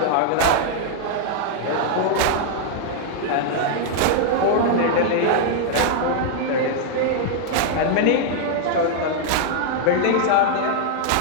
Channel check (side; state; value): both; different; correlation -0.01